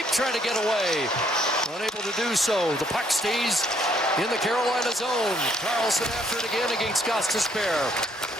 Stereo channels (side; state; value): both; normal; correlation 0.68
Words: trying to get away. Unable to do so. The puck stays in the Carolina zone. Karlsson after it again against Gostisbehere.